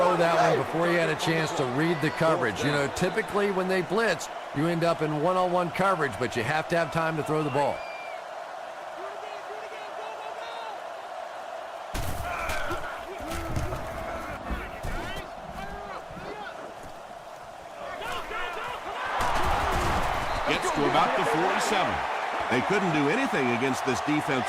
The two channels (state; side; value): identical; both; correlation 1.00